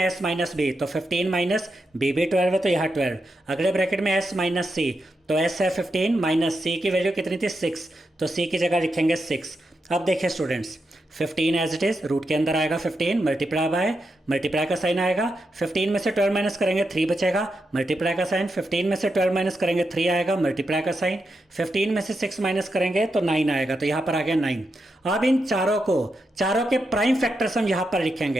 s माइनस b तो 15 माइनस b भी 12 है तो यहाँ 12। अगले ब्रैकेट में s माइनस c तो s है 15 माइनस c की वैल्यू कितनी थी 6, तो c की जगह लिखेंगे 6। अब देखिए students, 15 as it is, root के अंदर आएगा 15, मल्टीप्लाई बाय, मल्टीप्लाई का साइन आएगा, 15 में से 12 माइनस करेंगे 3 बचेगा, मल्टीप्लाई का साइन, 15 में से 12 माइनस करेंगे 3 आएगा, मल्टीप्लाई का साइन, 15 में से 6 माइनस करेंगे तो 9 आएगा, तो यहाँ पर आ गया 9। अब इन चारों के प्राइम फैक्टर्स हम यहाँ पर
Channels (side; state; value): both; normal; correlation 0.85